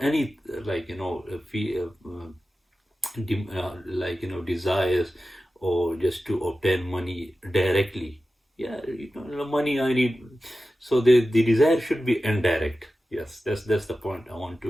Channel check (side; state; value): both; normal; correlation 0.94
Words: any desires or just to obtain money directly. Yeah, money I need. So the desire should be indirect. Yes, that's the point I want